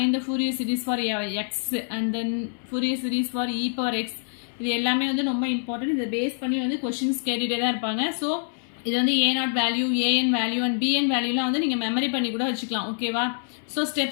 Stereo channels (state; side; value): silent; right; 61 dB below the other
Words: the Fourier series for x and then Fourier series for e power x. இது எல்லாமே வந்து ரொம்ப இம்பார்ட்டன்ட். இதை பேஸ் பண்ணி வந்து கொஸ்டின்ஸ் கேட்டுகிட்டே தான் இருப்பாங்க. ஸோ இது வந்து a0 value, an value and bn வேல்யூலாம் வந்து நீங்கள் மெமரி பண்ணி கூட வச்சுக்கலாம். ஓகேவா, ஸோ